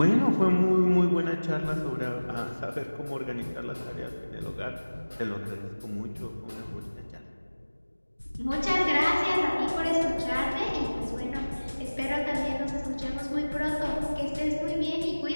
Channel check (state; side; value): inverted; both; correlation -1.00